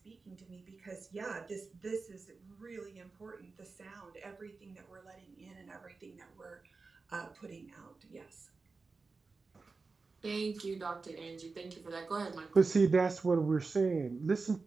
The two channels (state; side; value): quieter; left; 4.2 dB